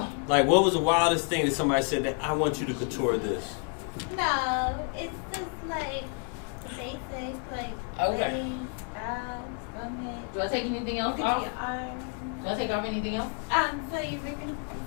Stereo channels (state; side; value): quieter; right; 37.7 dB